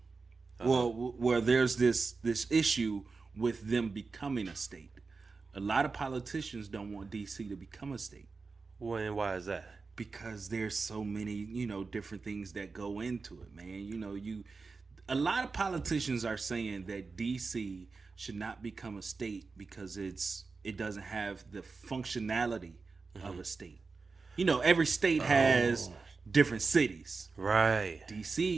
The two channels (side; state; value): left; quieter; 4.3 dB